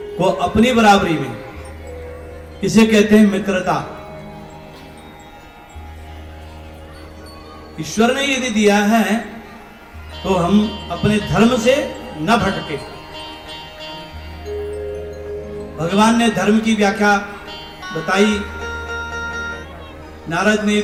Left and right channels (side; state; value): both; identical; correlation 1.00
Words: को अपनी बराबरी में, इसे कहते हैं मित्रता। ईश्वर ने यदि दिया है तो हम अपने धर्म से न भटके। भगवान ने धर्म की व्याख्या बताई, नारद ने